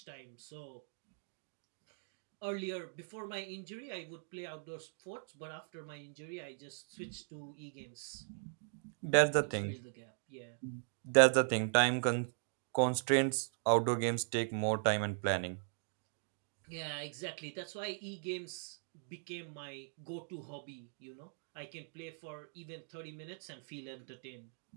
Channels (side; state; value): left; silent; digital silence